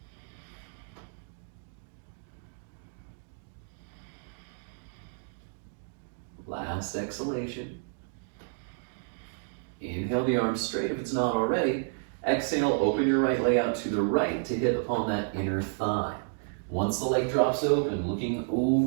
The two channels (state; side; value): silent; left; digital silence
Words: Last exhalation. Inhale the arms straight if it's not already. Exhale, open your right leg out to the right to hit upon that inner thigh. Once the leg drops open, looking